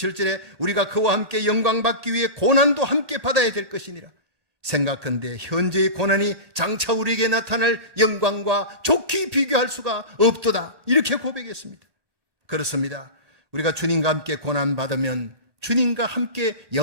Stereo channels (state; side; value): late; left; 1.8 ms